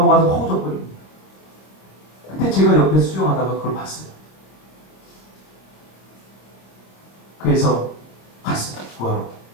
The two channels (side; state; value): right; late; 26 ms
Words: 허우적거립니다. 그때 제가 옆에 수영하다가 그걸 봤어요. 그래서 갔어요. 구하러.